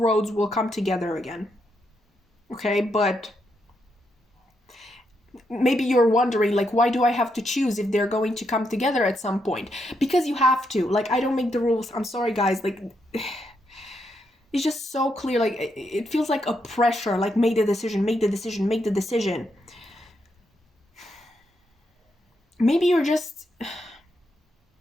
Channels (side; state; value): both; normal; correlation 0.80